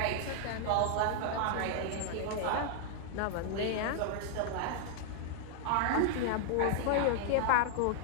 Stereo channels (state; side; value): different; both; correlation 0.00